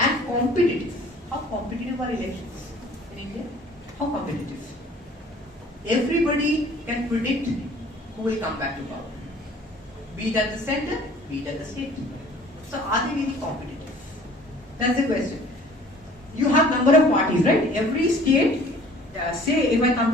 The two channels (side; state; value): both; normal; correlation 0.52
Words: competitive. How competitive are elections in India? How competitive? Everybody can predict who will come back to power. Be it at the center, be it at the state. So are they really competitive? That's the question. You have number of parties, right? Every state, say if I come